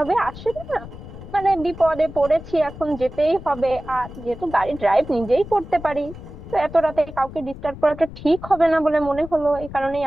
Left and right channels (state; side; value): noise; left; rumble, 14 dB below the sound